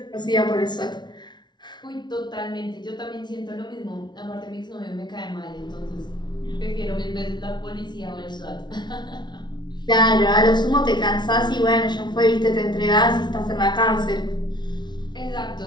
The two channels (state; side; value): late; right; 0.21 ms